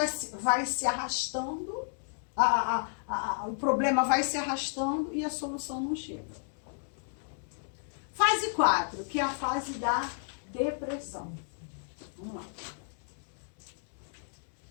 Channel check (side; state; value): right; silent; digital silence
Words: se arrastando, o problema vai se arrastando e a solução não chega. Fase 4, que é a fase da depressão. Vamos lá.